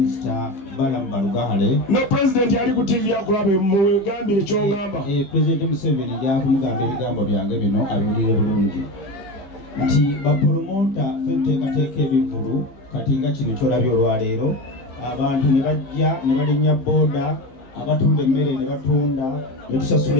Balamu Balugahale. Ne President ali ku TV akulabe mugambire ky'ongamba. President Museveni jakumugamba ebigambo byange bino abiwulire bulungi nti bapromota ffe tuteekateeka ebivulu kati nga kino kyolabye olwaleero abantu ne bajja ne balinnya booda, abatunda emmere ne batunda ne tusasula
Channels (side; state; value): right; late; 15 ms